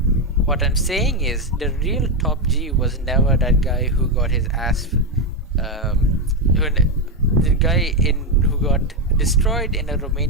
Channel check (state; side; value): normal; both; correlation 0.07